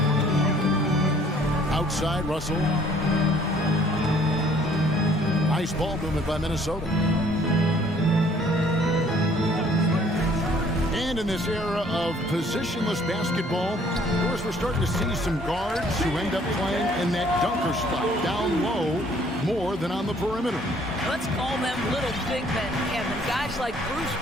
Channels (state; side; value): normal; both; correlation 0.59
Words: Outside Russell. Nice ball movement by Minnesota. And in this era of positionless basketball, of course, we're starting to see some guards who end up playing in that dunker spot down low more than on the perimeter. Let's call them little big men, Kevin. Guys like Bruce